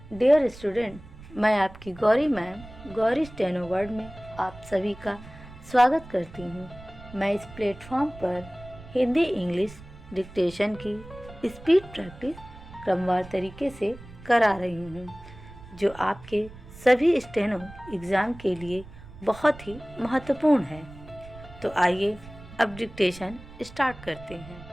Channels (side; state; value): right; noise; rumble, 18 dB below the sound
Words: dear student, मैं आपकी Gauri ma'am Gauri steno word में आप सभी का स्वागत करती हूँ। मैं इस प्लेटफॉर्म पर हिंदी इंग्लिश डिक्टेशन की स्पीड प्रैक्टिस क्रमवार तरीके से करा रही हूँ, जो आपके सभी स्टेनो एग्ज़ाम के लिए बहुत ही महत्वपूर्ण है। तो आइए अब डिक्टेशन स्टार्ट करते हैं।